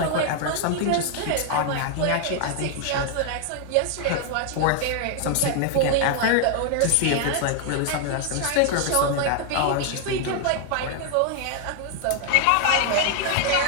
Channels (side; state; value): both; different; correlation 0.00